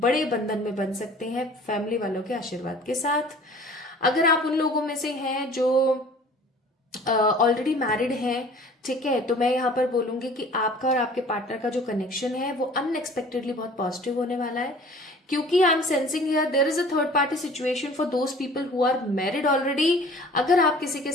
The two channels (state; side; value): normal; both; correlation 0.48